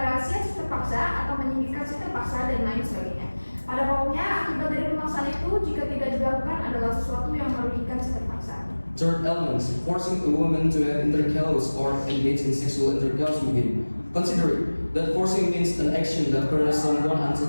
rahasia si terpaksa atau menyingkirkan si terpaksa dan lain sebagainya. Pada pokoknya, akibat dari pemaksaan itu jika tidak dilakukan adalah sesuatu yang merugikan si terpaksa. Third element, forcing a woman to have intercourse or engage in sexual intercourse with him. Considering that forcing means an action that coerces someone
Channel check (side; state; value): both; inverted; correlation -1.00